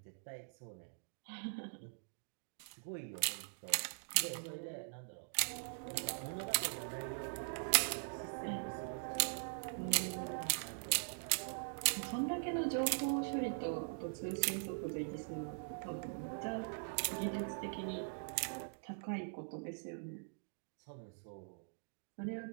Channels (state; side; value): silent; left; digital silence